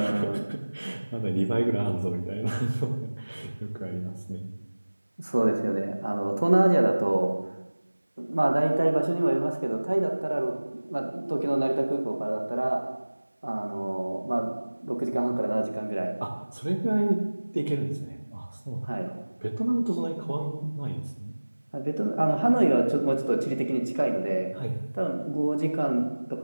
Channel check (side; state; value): both; inverted; correlation -1.00